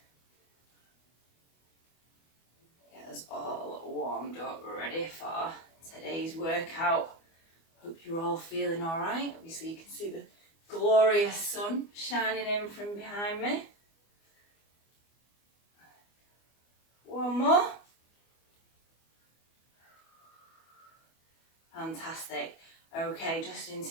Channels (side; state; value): right; late; 24 ms